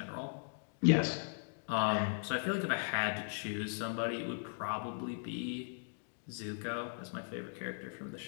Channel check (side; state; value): right; silent; digital silence